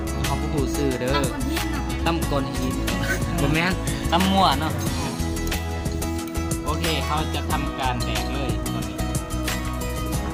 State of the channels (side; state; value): both; identical; correlation 1.00